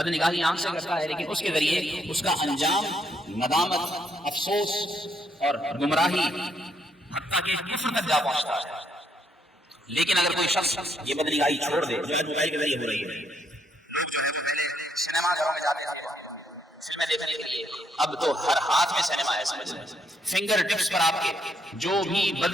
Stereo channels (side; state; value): both; normal; correlation 0.73